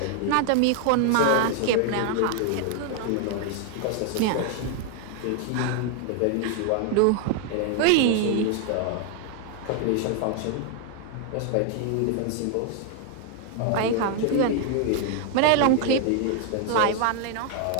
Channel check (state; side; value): different; both; correlation 0.00